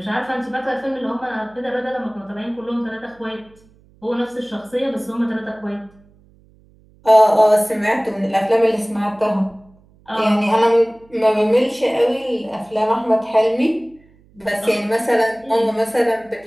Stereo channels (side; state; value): right; noise; hum, 30 dB below the sound